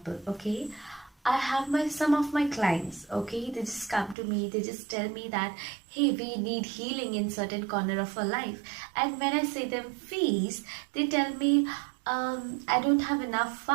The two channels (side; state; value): left; drops out; at 4.2 s